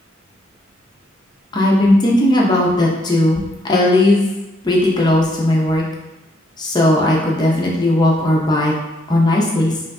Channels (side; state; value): both; normal; correlation 0.72